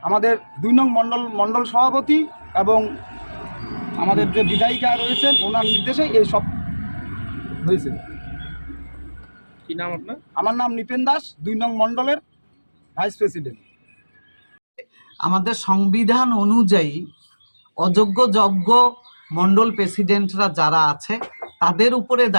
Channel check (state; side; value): inverted; both; correlation -1.00